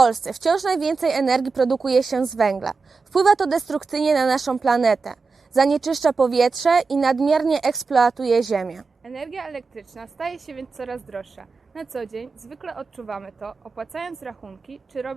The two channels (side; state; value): left; quieter; 4.4 dB